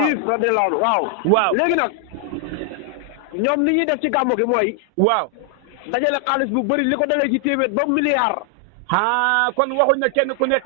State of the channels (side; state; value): both; normal; correlation 0.00